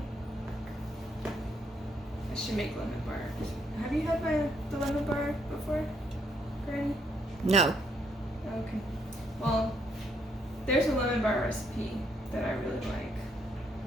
I should make lemon bars. Have you had the lemon bar before, Granny? No. Okay. Well, there's a lemon bar recipe that I really like.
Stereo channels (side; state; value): both; normal; correlation 0.72